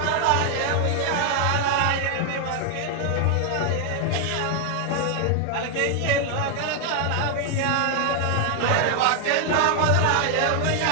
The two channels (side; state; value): both; different; correlation 0.00